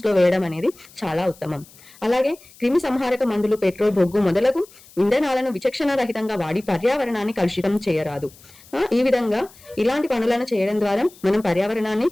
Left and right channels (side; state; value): left; noise; hiss, 24 dB below the sound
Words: లో వేయడం అనేది చాలా ఉత్తమం. అలాగే క్రిమి సంహారక మందులు, పెట్రోల్, బొగ్గు మొదలగు ఇంధనాలను విచక్షణ రహితంగా వాడి పర్యావరణాన్ని కలుషితం చేయరాదు. ఈ విధంగా ఇలాంటి పనులను చేయడం ద్వారా మనం పర్యావరణాన్ని